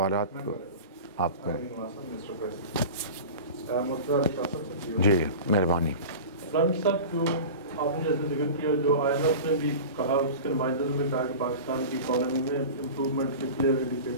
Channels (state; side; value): inverted; both; correlation -0.33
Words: کو؟ آپ کو. جی مہربانی. صاحب، جو آپ نے جیسے ذکر کیا، جو IMF نے بھی کہا، اس کے نمائندوں نے بھی کہا کہ پاکستان کی اکانومی میں امپروومنٹ کے کلیئر